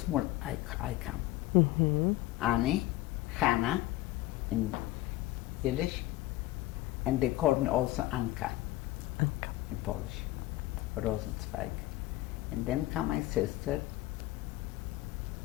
I come. Mm-hmm. Anny, Hannah in Yiddish, and they called me also Anka in Polish, Rosenzweig. And then come my sister,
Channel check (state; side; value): quieter; right; 17.0 dB